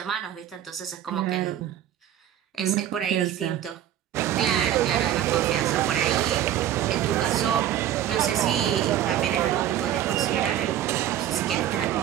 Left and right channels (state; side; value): quieter; left; 11.4 dB